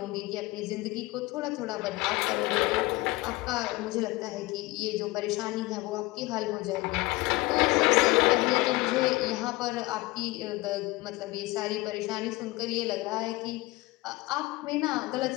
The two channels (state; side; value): quieter; right; 21.2 dB